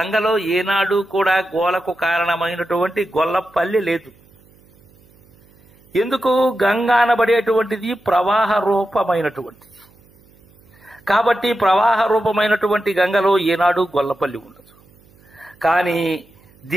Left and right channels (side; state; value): right; noise; hum, 29 dB below the sound